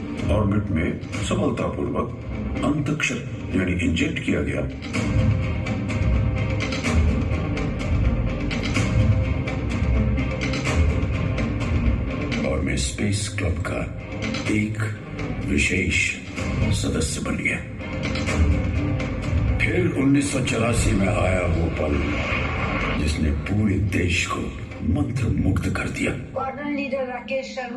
ऑर्बिट में सफलतापूर्वक अंतरिक्ष यानी इंजेक्ट किया गया। मैं स्पेस क्लब का एक विशेष सदस्य बन गया। फिर 1984 में आया वो पल जिसने पूरे देश को मंत्रमुग्ध कर दिया। वार्डन लीडर राकेश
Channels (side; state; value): both; identical; correlation 1.00